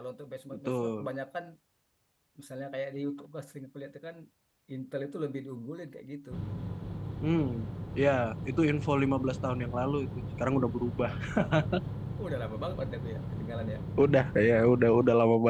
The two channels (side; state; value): both; identical; correlation 1.00